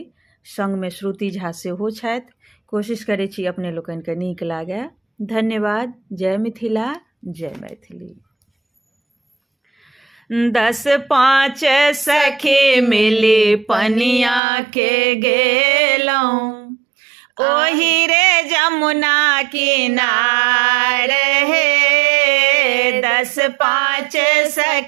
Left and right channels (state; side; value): drops out; left; at 14.4 s